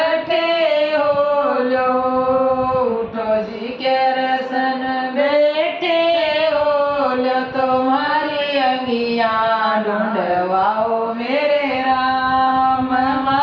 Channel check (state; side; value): identical; both; correlation 1.00